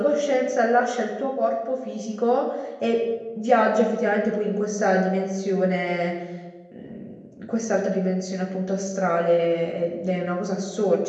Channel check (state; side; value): identical; both; correlation 1.00